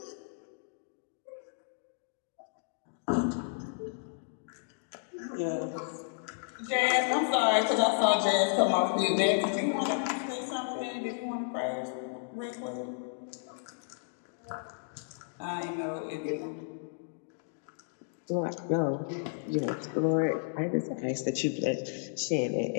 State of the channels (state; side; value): silent; right; digital silence